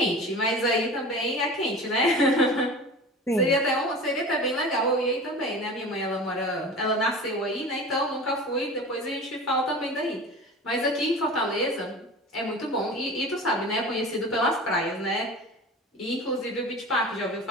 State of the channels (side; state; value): both; normal; correlation 0.35